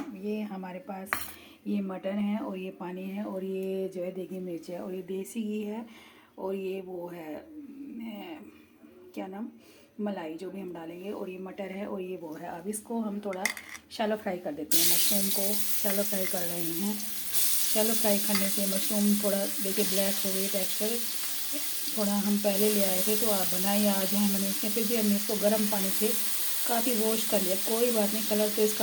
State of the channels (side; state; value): both; identical; correlation 1.00